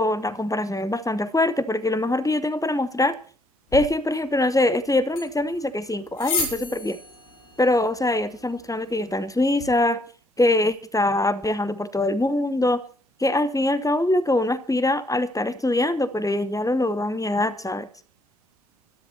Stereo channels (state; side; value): normal; both; correlation 0.69